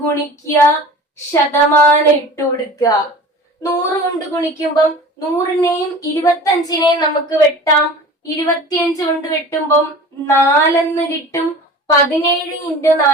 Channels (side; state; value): both; normal; correlation 0.39